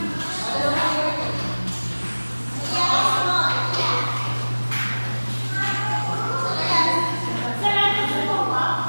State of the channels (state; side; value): inverted; both; correlation -1.00